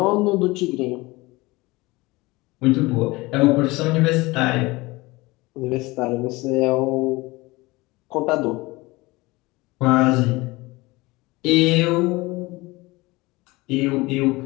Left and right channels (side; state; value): right; quieter; 22.0 dB